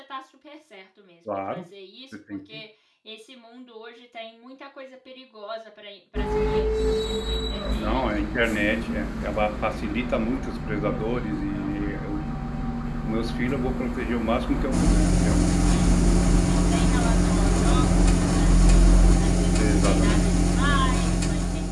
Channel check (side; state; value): both; identical; correlation 1.00